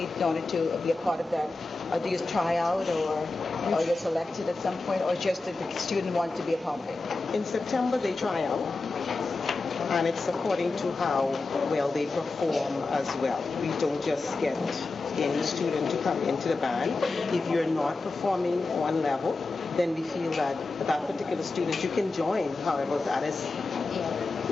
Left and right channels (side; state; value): right; quieter; 3.5 dB